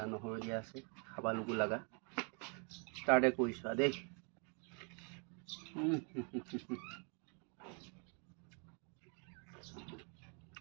নহৰু দিয়া আছে খাব লগু লগা ষ্টাৰ্টে কৰিছোঁ দেই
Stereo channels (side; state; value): left; quieter; 37.5 dB